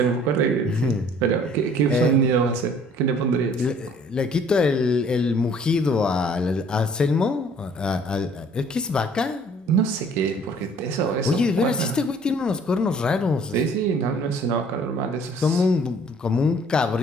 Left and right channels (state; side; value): normal; both; correlation 0.56